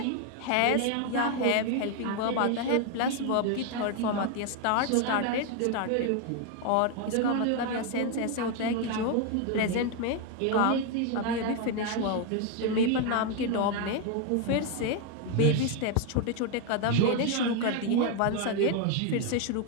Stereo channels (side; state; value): both; different; correlation 0.01